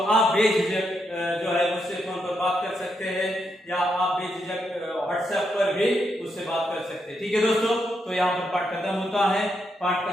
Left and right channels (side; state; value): both; normal; correlation 0.81